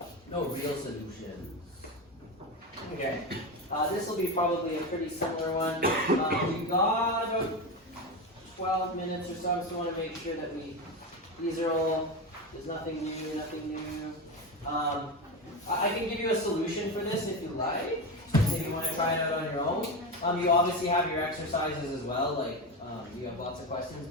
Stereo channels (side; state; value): both; normal; correlation 0.18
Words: No real solutions. Okay. This will be probably a pretty similar one. We've got about 12 minutes or so. I just want to make sure that these are all, there's nothing new, nothing new. I can give you a solution for this if you like, if you want to try it out on your own. You obviously have your exercises as well, like you have lots of questions,